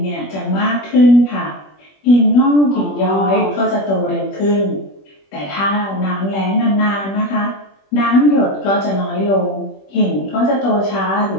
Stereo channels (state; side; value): late; right; 21 ms